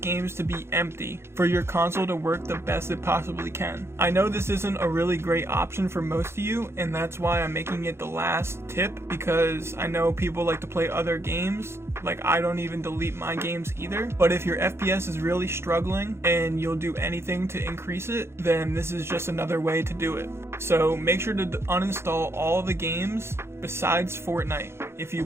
to be empty for your console to work the best it possibly can. I know this isn't a really great option for most of you, and that's why I'm making it the last tip, because I know people like to play other games. Like, I don't even delete my games either. But if your FPS is really struggling and you'll do anything to increase it, then this is just another way to do it. So make sure to uninstall all the games besides Fortnite if you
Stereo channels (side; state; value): left; late; 0.12 ms